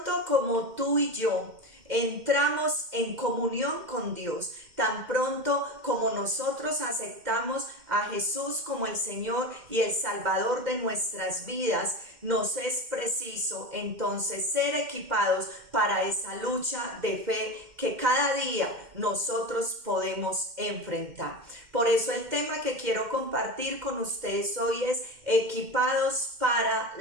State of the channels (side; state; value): left; late; 2.1 ms